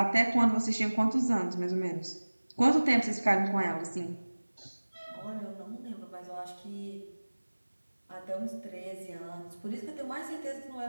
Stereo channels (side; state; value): both; inverted; correlation -1.00